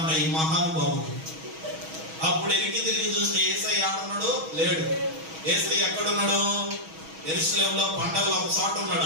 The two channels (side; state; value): left; late; 6.2 ms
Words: ఈ మహానుభావుడు. అప్పుడు ఎనికి తిరిగి చూస్తే యేసయ్య ఆడున్నాడు? లేడు. యేసయ్య ఎక్కడున్నాడు? యెరూషలేములో పండగలో ఒక చోట